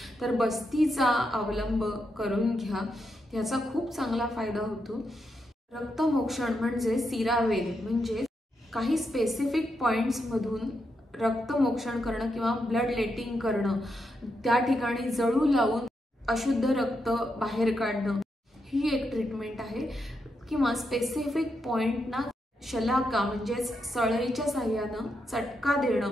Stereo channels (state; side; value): normal; both; correlation 0.83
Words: तर बस्तीचा अवलंब करून घ्या, याचा खूप चांगला फायदा होतो. रक्तमोक्षण म्हणजे सिरावेद, म्हणजे काही स्पेसिफिक पॉइंट्समधून रक्तमोक्षण करणं किंवा ब्लड लेटिंग करणं, त्या ठिकाणी जळू लावून अशुद्ध रक्त बाहेर काढणं, ही एक ट्रीटमेंट आहे. किंवा स्पेसिफिक पॉइंटना शलाका म्हणजेच सळईच्या साह्यानं चटका